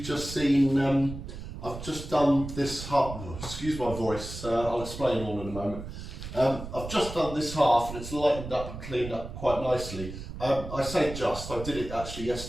just seen, I've just done this half, excuse my voice, I'll explain all in a moment. I've just done this half and it's lightened up and cleaned up quite nicely. I say just, I did it actually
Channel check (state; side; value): noise; right; rumble, 10 dB below the sound